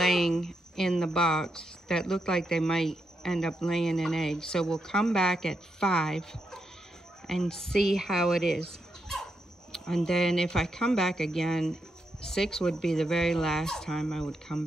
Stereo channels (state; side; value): normal; both; correlation 0.83